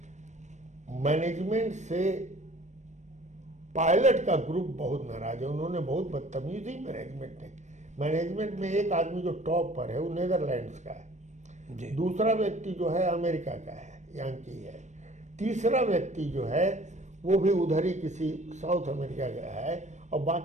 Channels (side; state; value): left; late; 0.34 ms